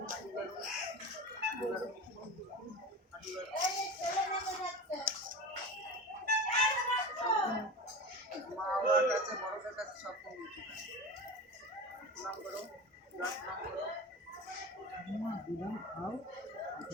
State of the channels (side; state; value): both; normal; correlation 0.30